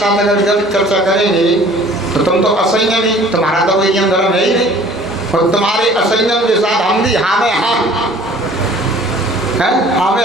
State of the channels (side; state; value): both; normal; correlation 0.50